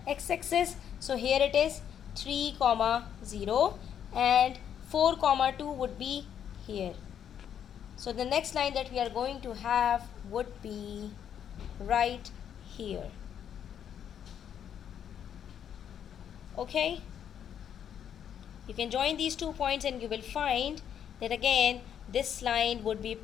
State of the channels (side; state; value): right; quieter; 9.0 dB